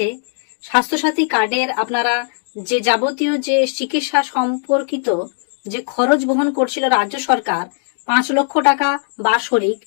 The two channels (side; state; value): right; silent; digital silence